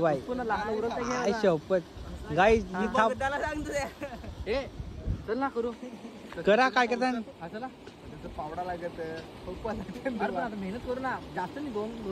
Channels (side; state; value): both; identical; correlation 1.00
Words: शपथ. गाईज ही थाप चल ना करू करा. काय करता पावडा लागत मेहनत करू ना जास्त नाही